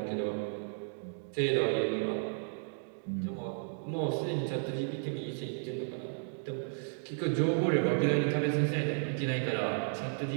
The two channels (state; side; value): silent; left; digital silence